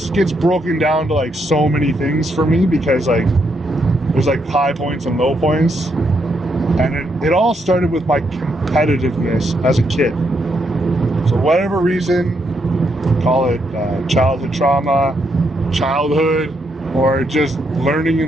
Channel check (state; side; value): normal; both; correlation 0.78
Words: gets broken down to like so many things for me, because like there's like high points and low points, and it all started with my competitiveness as a kid. So whatever reason, call it childhood trauma, childhood, or just learning